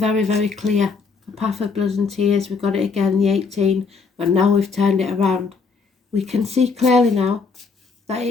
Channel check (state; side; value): quieter; right; 4.8 dB